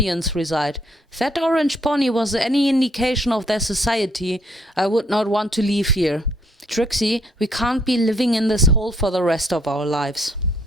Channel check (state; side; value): normal; both; correlation 0.67